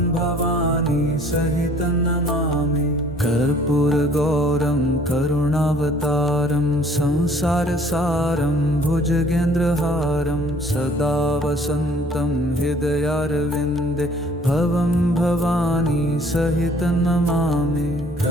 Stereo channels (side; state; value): both; normal; correlation 0.56